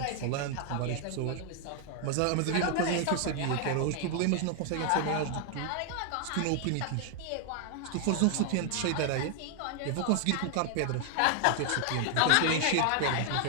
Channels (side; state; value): both; different; correlation 0.00